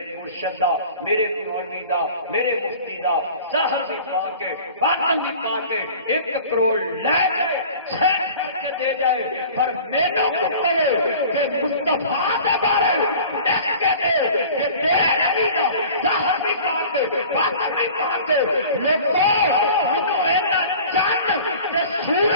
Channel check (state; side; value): inverted; both; correlation -0.43